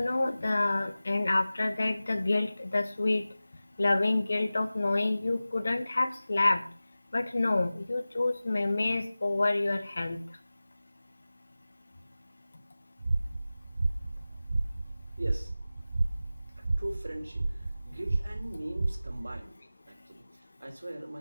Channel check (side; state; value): both; inverted; correlation -0.97